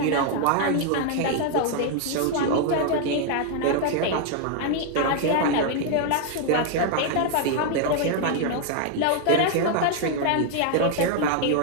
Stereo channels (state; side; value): different; both; correlation 0.00